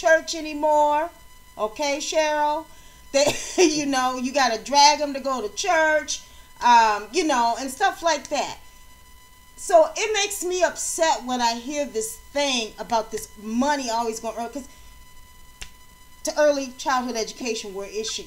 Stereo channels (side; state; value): both; identical; correlation 1.00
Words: anymore. Okay, Cheryl? You got to drag them to go to church, and stuff like that. So it makes me upset when I hear this thing about this money always going early, because to early childhood education, where it